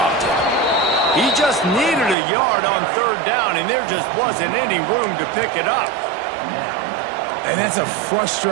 it. He just needed a yard on 3rd down, and there just wasn't any room to pick it up. And that's a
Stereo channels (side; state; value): left; drops out; at 2.1 s